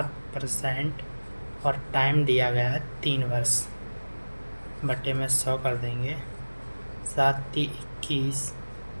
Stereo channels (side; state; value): both; inverted; correlation -1.00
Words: और टाइम दिया गया है 3 वर्ष बटे में 100 कर देंगे। 7×3 = 21,